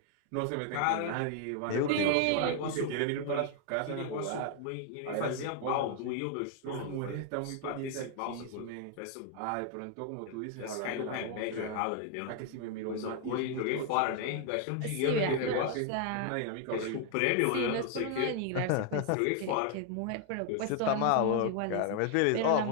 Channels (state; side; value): different; both; correlation 0.00